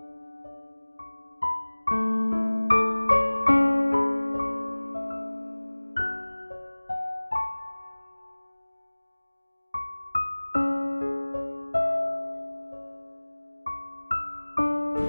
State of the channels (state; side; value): inverted; both; correlation -1.00